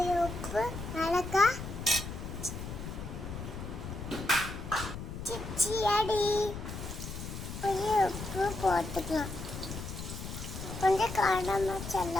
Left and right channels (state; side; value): noise; left; rumble, 8 dB below the sound